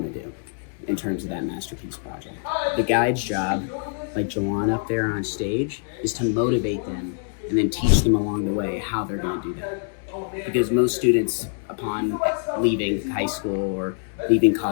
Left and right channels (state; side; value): silent; right; 61 dB below the other